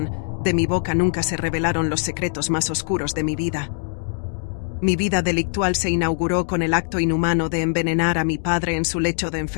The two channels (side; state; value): right; silent; digital silence